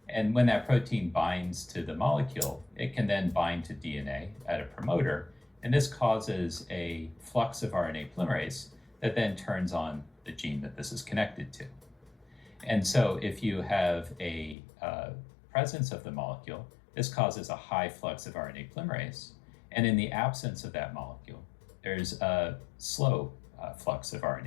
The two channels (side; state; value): right; drops out; at 14.6 s